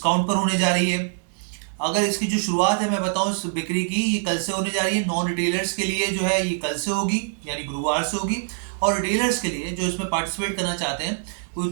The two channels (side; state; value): left; silent; digital silence